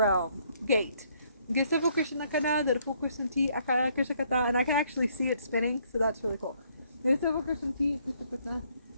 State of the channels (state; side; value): inverted; both; correlation -0.68